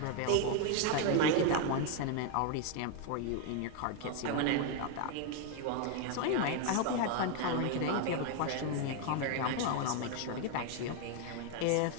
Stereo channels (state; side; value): different; both; correlation 0.01